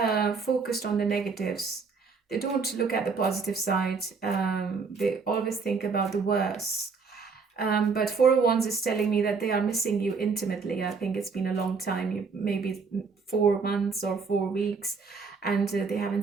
focused on the negatives. They don't look at the positive side. They always think about the worst. But Four of Wands is telling me that they are missing you intimately. I think it's been a long time, maybe 4 months or 4 weeks, and they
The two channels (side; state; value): left; quieter; 5.0 dB